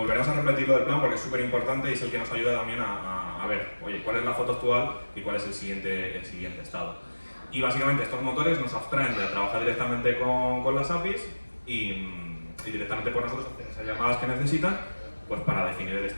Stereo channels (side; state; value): both; inverted; correlation -1.00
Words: a repetir lo del plan porque es súper importante y es el que nos ayuda también a ver, oye, cuál es la foto actual y cuál es el siguiente estado. Y básicamente estos motores nos abstraen de trabajar directamente con las APIs y directamente por nosotros hacen esas llamadas que necesitan, pues para definir el